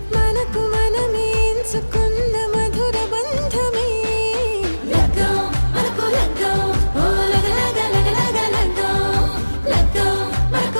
మనకు మనమే ఎంచుకున్న మధుర బంధమే లగ్గం మనకు లగ్గం ఓ లగలగ లగ్గం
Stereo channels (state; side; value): inverted; both; correlation -1.00